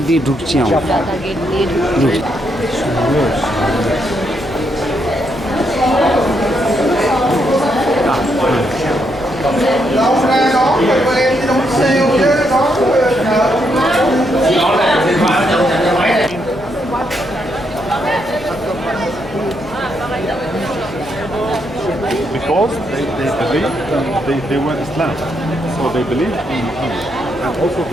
দিয়ে ঢুকছি আমরা। Because they they were Islam, so they believed in Muhammad, and also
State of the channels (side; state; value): left; noise; hum, 18 dB below the sound